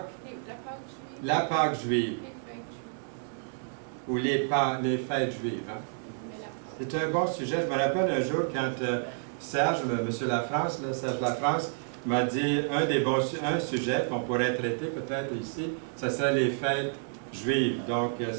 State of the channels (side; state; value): left; silent; digital silence